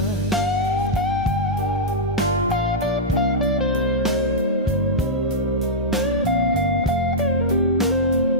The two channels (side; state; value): both; normal; correlation -0.09